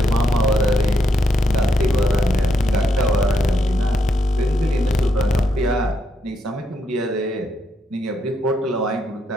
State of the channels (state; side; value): normal; both; correlation 0.79